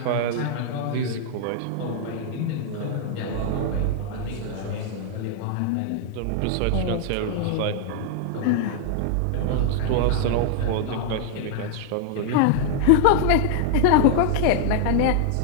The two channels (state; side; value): different; both; correlation -0.01